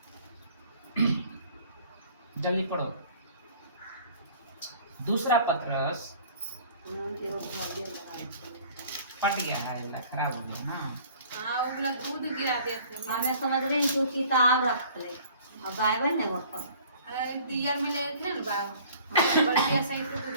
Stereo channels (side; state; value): both; inverted; correlation -0.51